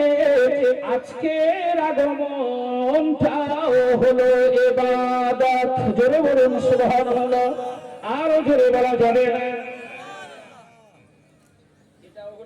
আজকের আগমনটাও হলো ইবাদত। জোরে বলুন সুবহানাল্লাহ, আরো জোরে বলা যাবে না। এটাও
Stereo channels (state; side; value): identical; both; correlation 1.00